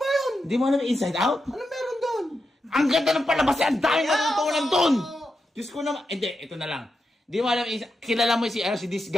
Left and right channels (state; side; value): normal; both; correlation 0.87